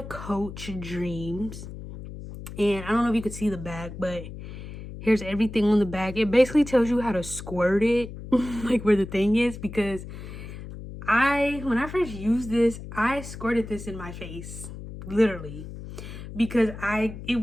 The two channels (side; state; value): left; noise; hum, 11 dB below the sound